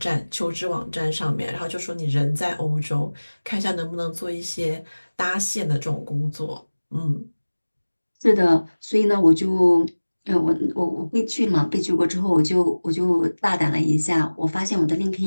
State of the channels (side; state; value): both; inverted; correlation -1.00